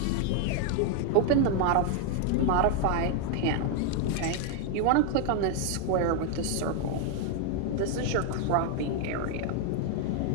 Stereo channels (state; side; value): different; both; correlation 0.00